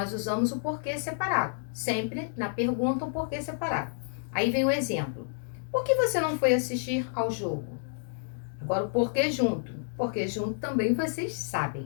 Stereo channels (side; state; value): right; silent; digital silence